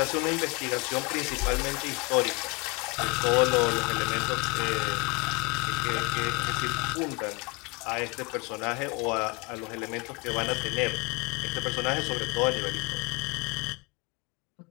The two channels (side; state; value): right; quieter; 27.6 dB